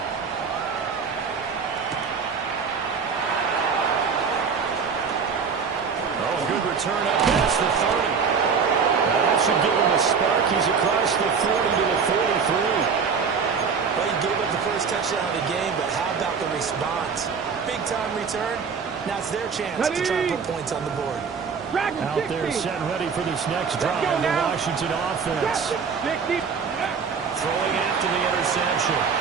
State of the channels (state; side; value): quieter; left; 5.9 dB